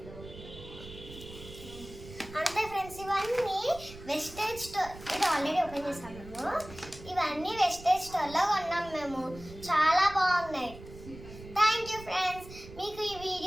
అంతే ఫ్రెండ్స్, ఇవన్నీ వెస్టేజ్ స్టోర్. ఇది ఆల్రెడీ ఓపెన్ చేసాం మేము. ఇవన్నీ వెస్టేజ్ స్టోర్లో కొన్నాం మేము. చాలా బాగున్నాయి. Thank you friends. మీకు ఈ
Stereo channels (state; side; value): noise; right; rumble, 16 dB below the sound